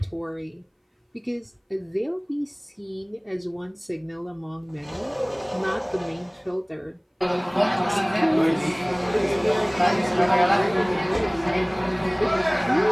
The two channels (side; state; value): both; identical; correlation 1.00